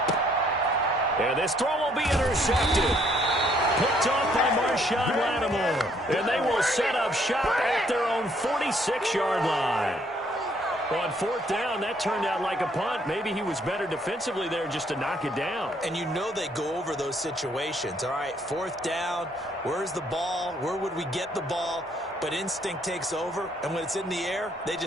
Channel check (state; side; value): normal; both; correlation 0.66